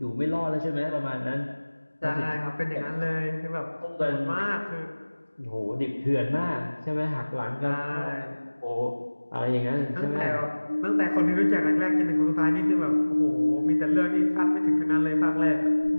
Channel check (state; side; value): inverted; both; correlation -1.00